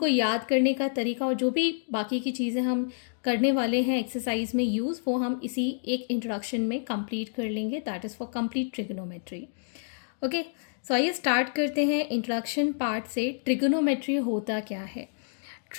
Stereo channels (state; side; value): silent; right; digital silence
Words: याद करने का तरीका और जो भी बाकी की चीज़ें हम करने वाले हैं एक्सरसाइज में यूज़, वो हम इसी एक इंट्रोडक्शन में कंप्लीट कर लेंगे। That is for complete trigonometry. Okay, so आइए स्टार्ट करते हैं इंट्रोडक्शन पार्ट से। ट्रिगोनोमेट्री होता क्या है?